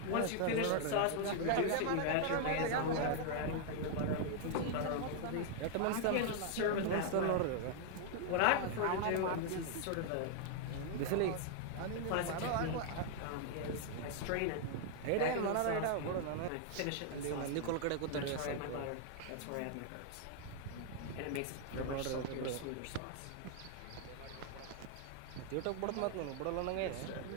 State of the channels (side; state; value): both; different; correlation 0.00